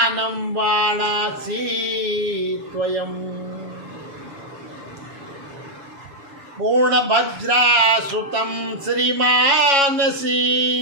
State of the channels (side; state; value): left; late; 7.2 ms